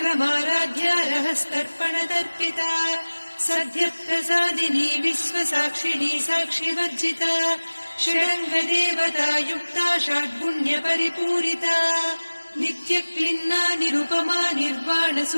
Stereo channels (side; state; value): both; inverted; correlation -1.00